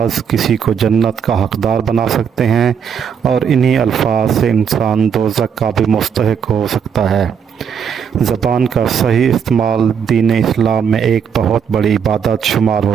کسی کو جنت کا حقدار بنا سکتے ہیں اور انہی الفاظ سے انسان دوزخ کا بھی مستحق ہو سکتا ہے۔ زبان کا صحیح استعمال دین اسلام میں ایک بہت بڑی عبادت شمار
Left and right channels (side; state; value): left; quieter; 7.3 dB